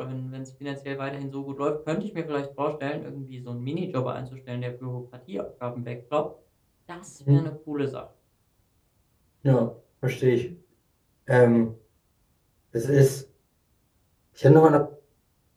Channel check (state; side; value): identical; both; correlation 1.00